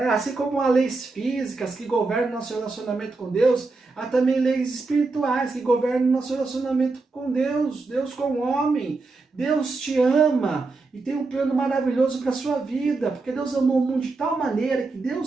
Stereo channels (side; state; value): left; quieter; 3.7 dB